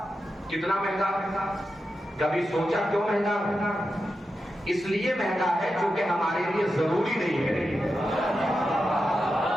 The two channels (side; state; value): both; normal; correlation 0.89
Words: کتنا مہنگا ہے؟ کبھی سوچا کیوں مہنگا ہے؟ اس لیے مہنگا ہے کیونکہ ہمارے لیے ضروری نہیں ہے۔